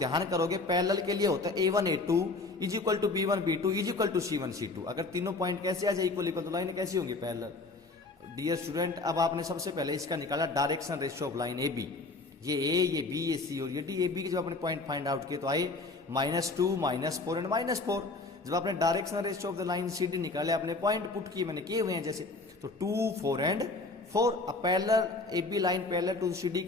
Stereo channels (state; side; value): quieter; right; 3.4 dB